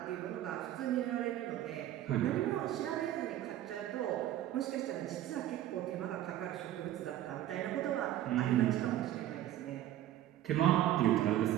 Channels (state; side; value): quieter; left; 13.0 dB